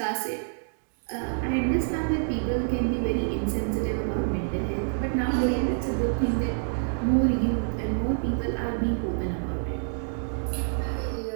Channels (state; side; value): silent; left; digital silence